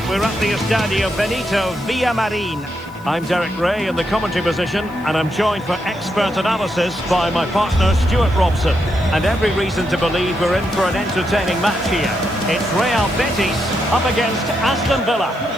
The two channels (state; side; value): noise; right; hiss, 27 dB below the sound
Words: We're at the Estadio Benito Villamarin. I'm Derek Ray in the commentary position, and I'm joined for expert analysis by my partner Stuart Robson. And every reason to believe we're in for an entertaining match here. It's Real Betis up against Aston Villa.